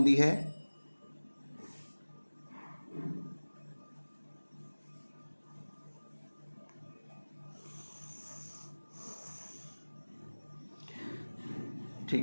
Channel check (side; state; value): both; inverted; correlation -1.00